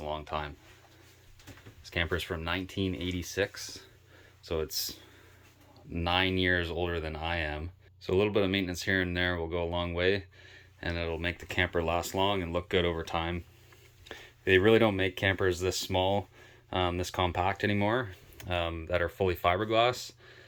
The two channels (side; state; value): both; identical; correlation 1.00